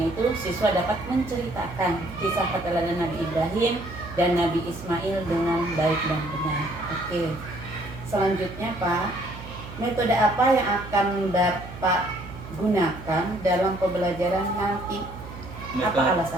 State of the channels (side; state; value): right; noise; hum, 13 dB below the sound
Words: itu siswa dapat menceritakan kisah keteladanan Nabi Ibrahim dan Nabi Ismail dengan baik dan benar. Oke. Selanjutnya Pak, metode apa yang akan Bapak gunakan dalam pembelajaran nanti? Apa